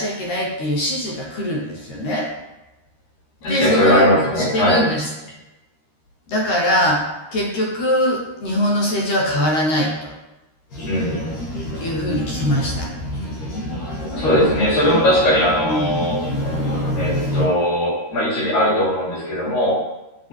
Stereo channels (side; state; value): right; late; 13 ms